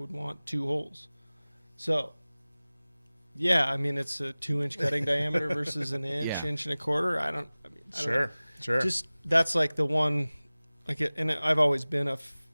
want 2 holes. So. Yeah, I mean it's a 2-inch cutting diameter versus an inch, Yeah. inch and a quarter. I don't Sure. Just that's like the one, and I've always been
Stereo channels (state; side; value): inverted; both; correlation -0.99